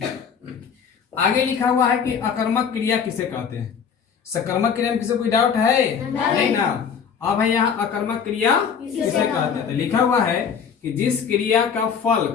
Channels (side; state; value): right; quieter; 7.0 dB